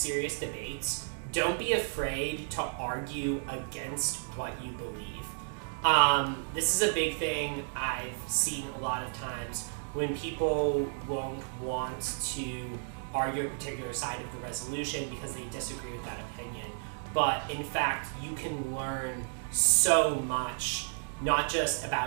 debates, don't be afraid to argue against what you believe. This is a big thing I've seen a lot of times when people won't want to argue a particular side of the resolution because they disagree with that opinion. But in fact, you can learn so much, not just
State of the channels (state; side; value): silent; left; digital silence